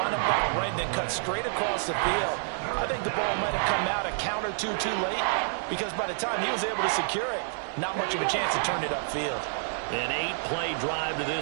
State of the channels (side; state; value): left; silent; 59 dB below the other